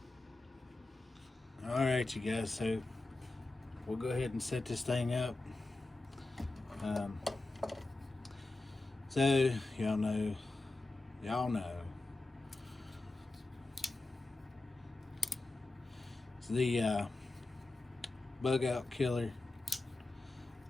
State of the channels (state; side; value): quieter; right; 3.1 dB